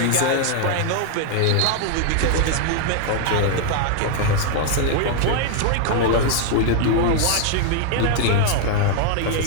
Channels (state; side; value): different; both; correlation 0.00